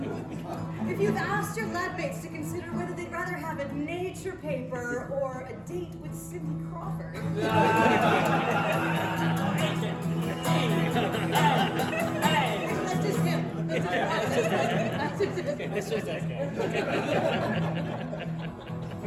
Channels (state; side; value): identical; both; correlation 1.00